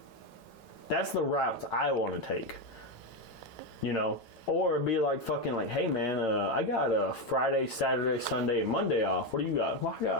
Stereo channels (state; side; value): late; right; 5.4 ms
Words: That's the routes I want to take. You know? Or it'd be like fucking like, hey man, I got a Friday, Saturday, Sunday, and Monday off. What do you got? Well,